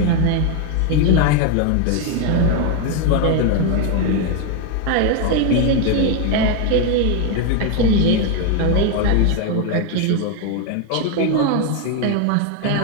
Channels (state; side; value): different; both; correlation 0.01